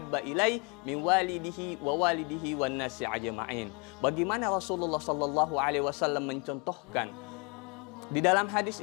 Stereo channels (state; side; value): quieter; right; 31.8 dB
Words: ilai min walidihi wan nasi ajma'in." Bagaimana Rasulullah sallallahu alaihi wasallam mencontohkan di dalam hadis